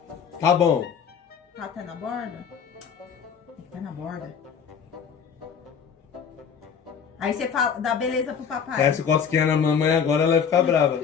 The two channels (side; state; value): right; quieter; 7.0 dB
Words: Tá bom. Tá até na borda? Tem que estar na borda. Aí você fala, dá beleza pro papai. Essa cosquinha na mamãe agora, ela vai ficar brava.